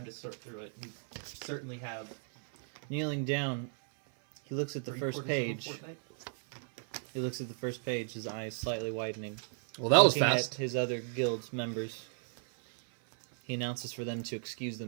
to sort through it, you certainly have. Kneeling down, he looks at the first 3/4 of a page. fortnight. He looks at the first page, his eyes slightly widening. Well, that was Looking fast. at his other guild members, he announces for them to excuse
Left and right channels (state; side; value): silent; left; 55 dB below the other